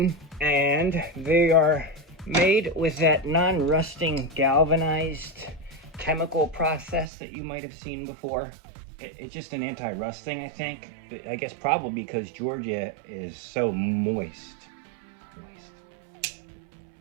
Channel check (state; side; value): drops out; left; at 7.1 s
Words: and they are made with that non-rusting galvanized chemical process that you might have seen before. It's just an anti-rust thing, I think. I guess probably because Georgia is so moist.